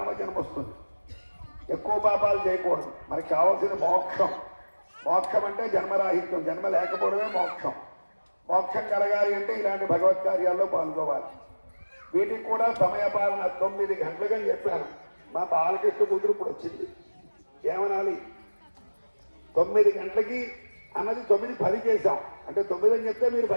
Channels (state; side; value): inverted; both; correlation -1.00